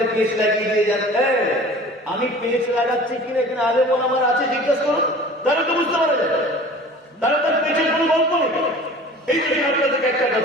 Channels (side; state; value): both; normal; correlation 0.43